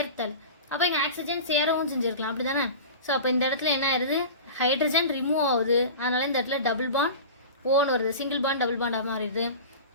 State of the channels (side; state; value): both; inverted; correlation -0.33